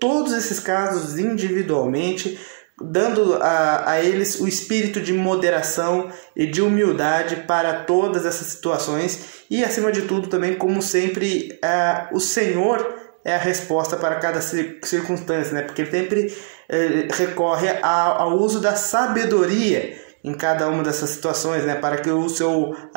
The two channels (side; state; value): left; silent; digital silence